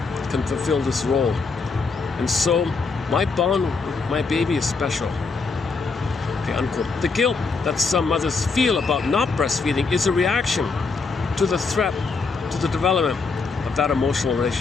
can fulfill this role, and so my bond with my baby is special. Okay, unquote. The guilt that some mothers feel about not breastfeeding is a reaction to the threat to the development of that emotional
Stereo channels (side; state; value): right; quieter; 4.4 dB